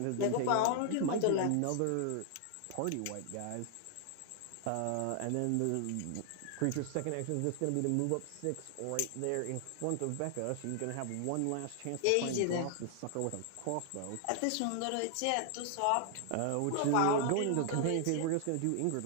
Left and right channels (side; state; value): both; different; correlation 0.00